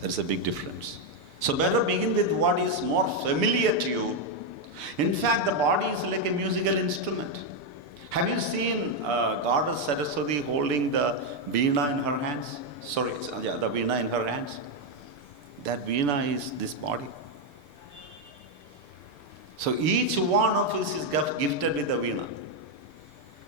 There is a big difference. So better begin with what is more familiar to you. In fact, the body is like a musical instrument. Have you seen Goddess Saraswati holding the veena in her hands? The veena in her hands. That veena is this body. So each one of us is gifted with a veena.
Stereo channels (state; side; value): late; left; 6.8 ms